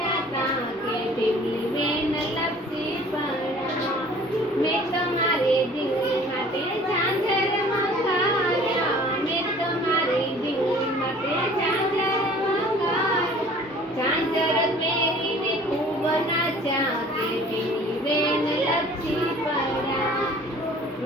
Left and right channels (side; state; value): both; normal; correlation 0.50